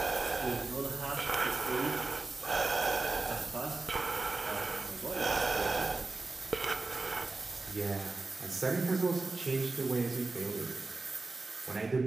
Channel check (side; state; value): left; quieter; 3.5 dB